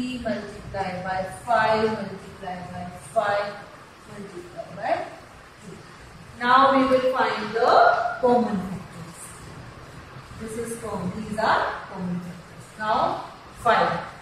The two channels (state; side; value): identical; both; correlation 1.00